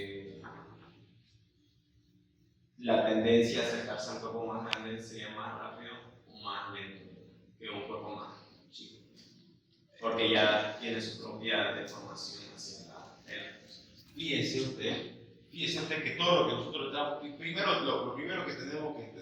la tendencia a acercarse a un cuerpo más grande sería más rápido o más lento que un cuerpo más chico, porque ya tiene su propia deformación hacia la era. Fíjese usted que todo lo que nosotros estamos, lo primero que tenemos que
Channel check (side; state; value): both; identical; correlation 1.00